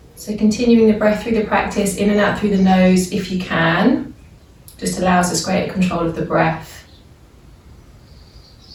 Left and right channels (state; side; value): identical; both; correlation 1.00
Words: So continuing the breath through the practice, in and out through the nose if you can, just allows us greater control of the breath,